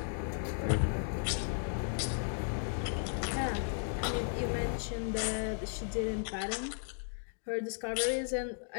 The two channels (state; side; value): silent; right; digital silence